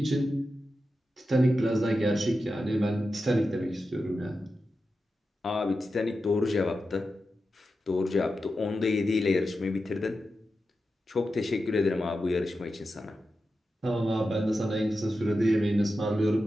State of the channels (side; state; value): both; normal; correlation 0.91